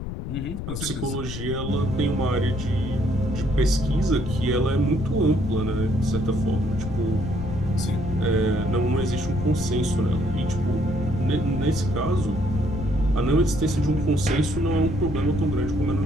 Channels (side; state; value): left; noise; rumble, 6 dB below the sound